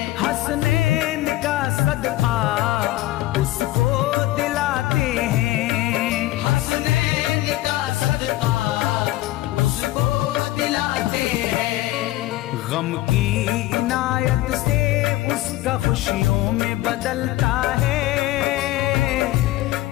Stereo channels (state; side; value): quieter; right; 16.6 dB